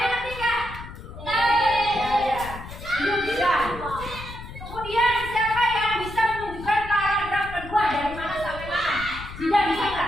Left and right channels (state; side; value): noise; left; rumble, 13 dB below the sound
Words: ngerti nggak? Ya. Belum bisa. Kemudian siapa yang bisa menunjukkan paragraf kedua dari mana sampai mana? Tidak bisa